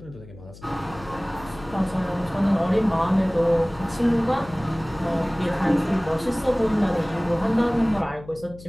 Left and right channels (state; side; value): noise; left; hum, 18 dB below the sound